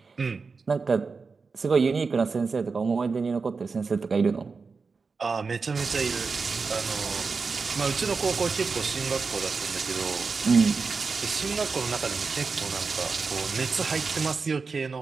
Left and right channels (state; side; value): quieter; left; 4.7 dB